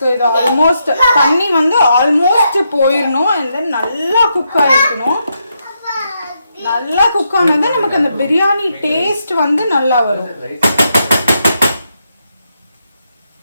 இது ஆல்மோஸ்ட் தண்ணி வந்து ஆல்மோஸ்ட் போயிடணும். அண்ட் தென் நல்லா குக் ஆகிருக்கணும். நல்லா குக் ஆனது நமக்கு அந்த பிரியாணி டேஸ்ட் வந்து நல்லா வரும்.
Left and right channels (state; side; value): inverted; both; correlation -0.81